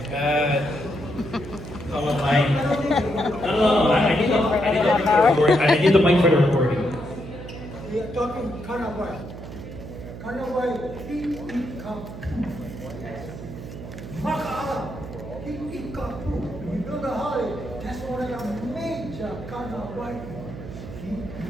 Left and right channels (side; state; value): right; noise; hum, 11 dB below the sound